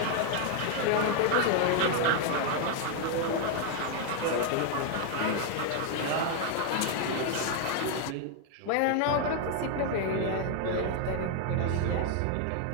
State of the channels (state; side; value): different; both; correlation 0.00